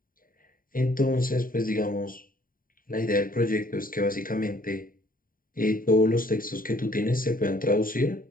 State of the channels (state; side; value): late; right; 0.41 ms